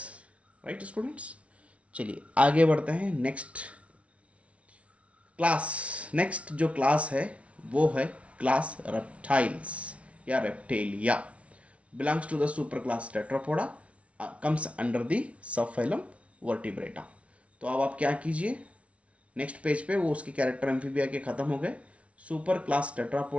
right students. चलिए आगे बढ़ते हैं। नेक्स्ट क्लास, नेक्स्ट जो क्लास है वो है क्लास रेप्टाइल्स या Reptilia, belongs to the super class Tetrapoda, comes under the subphylum Vertebrata. तो अब आप क्या कीजिए, नेक्स्ट पेज पे वो उसके कैरेक्टर एम्फीबिया के खत्म हो गए, super class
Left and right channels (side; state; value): left; late; 0.063 ms